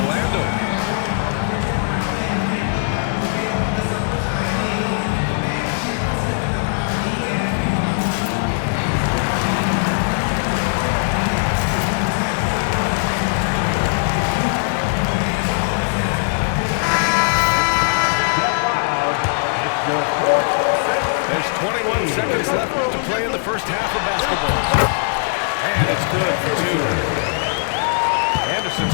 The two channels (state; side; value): silent; right; digital silence